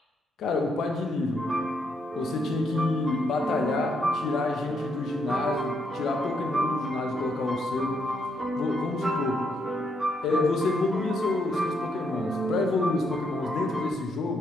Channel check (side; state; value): both; normal; correlation 0.76